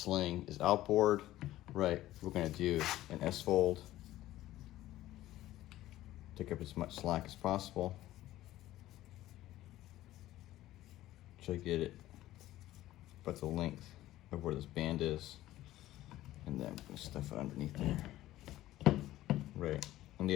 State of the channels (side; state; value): right; quieter; 15.0 dB